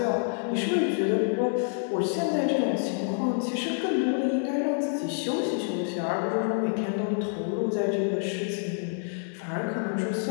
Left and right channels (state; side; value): silent; right; 56 dB below the other